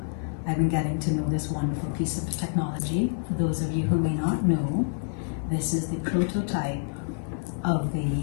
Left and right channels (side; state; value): right; silent; 60 dB below the other